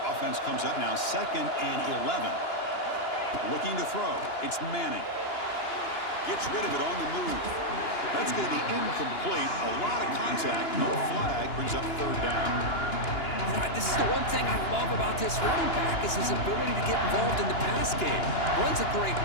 Offense comes up now 2nd and 11. Looking to throw. It's Manning. Gets rid of it on the move. That's going to be incomplete. A lot of contact. No flag. Brings up 3rd down. This is the one thing I love about this running back is his ability to get involved in the pass game. Runs a great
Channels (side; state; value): right; late; 2.9 ms